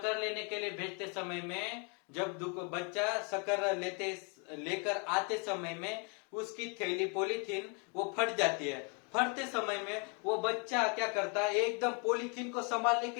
लेने के लिए भेजते समय में जब बच्चा शक्कर लेकर आते समय में उसकी थैली पॉलीथीन वो फट जाती है। फटते समय में वो बच्चा क्या करता है, एकदम पॉलीथीन को संभालने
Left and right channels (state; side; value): quieter; right; 36.2 dB